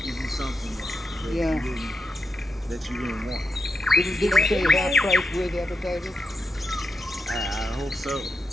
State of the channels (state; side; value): normal; both; correlation 0.86